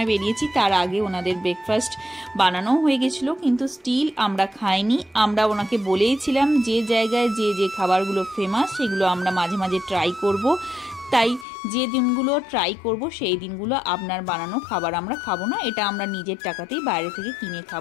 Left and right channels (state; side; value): drops out; right; at 11.5 s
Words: বেরিয়েছি, তার আগে ওনাদের ব্রেকফাস্ট বানানোও হয়ে গেছিলো, কিন্তু স্টিল আমরা খাইনি। আমরা ওনাকে বলেইছিলাম যে জায়গায় যে যে খাবারগুলো ফেমাস সেগুলো আমরা মাঝে মাঝে ট্রাই করব। তাই যে দিনগুলো ট্রাই করব সেই দিনগুলো আপনার বানানো খাবার আমরা খাবো না, এটা আমরা নিজের টাকাতেই বাইরে থেকে কিনে